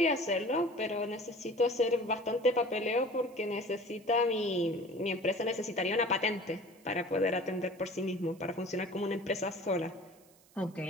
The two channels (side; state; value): right; noise; hiss, 28 dB below the sound